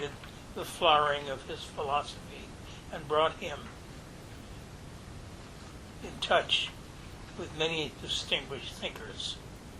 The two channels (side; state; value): both; identical; correlation 1.00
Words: the flowering of his philosophy and brought him in touch with many distinguished thinkers.